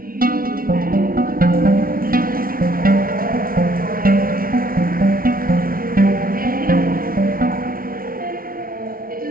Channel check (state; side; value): late; left; 0.42 ms